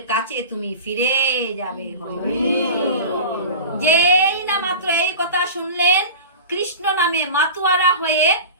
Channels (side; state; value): both; inverted; correlation -0.34